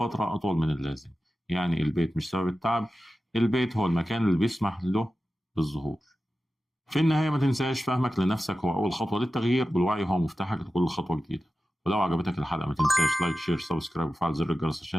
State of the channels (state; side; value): normal; both; correlation 0.94